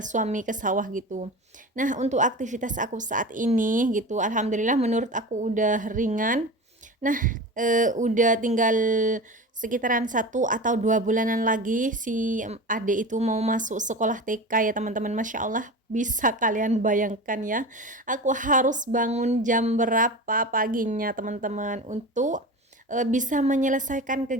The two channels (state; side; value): normal; both; correlation 0.30